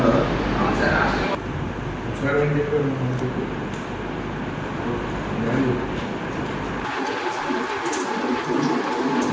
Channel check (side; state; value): both; identical; correlation 1.00